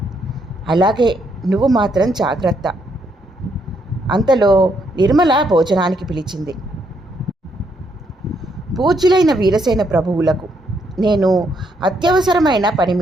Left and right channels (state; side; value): normal; both; correlation 0.74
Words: అలాగే, నువ్వు మాత్రం జాగ్రత్త. అంతలో నిర్మల భోజనానికి పిలిచింది. పూజ్యులైన వీరసేన ప్రభువులకు, నేను అత్యవసరమైన పని